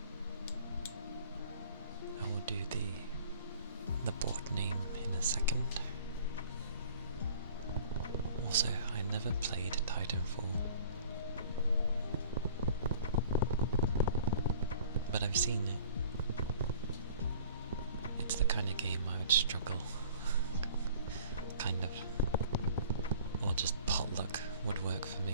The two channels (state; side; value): inverted; both; correlation -0.49